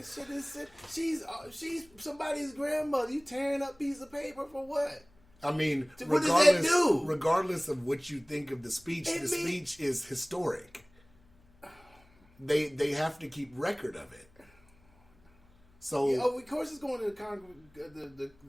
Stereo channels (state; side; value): noise; left; hum, 30 dB below the sound